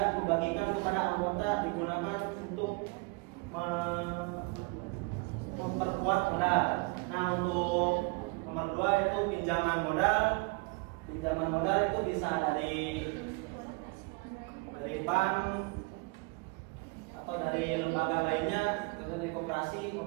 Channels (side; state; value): left; quieter; 28.7 dB